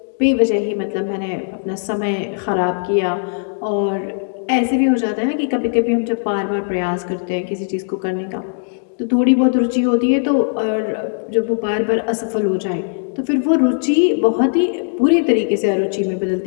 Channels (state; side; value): silent; right; digital silence